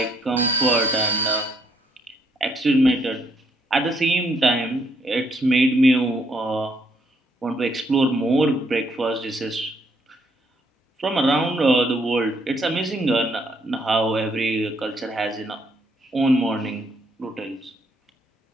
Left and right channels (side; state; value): both; normal; correlation 0.71